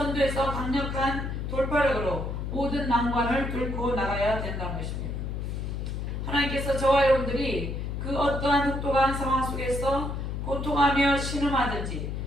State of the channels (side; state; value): left; noise; hum, 4 dB below the sound